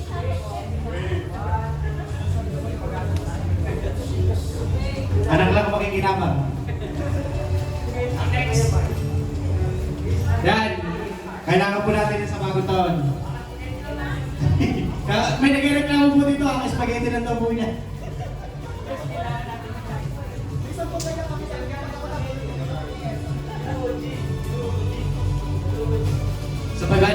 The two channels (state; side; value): identical; both; correlation 1.00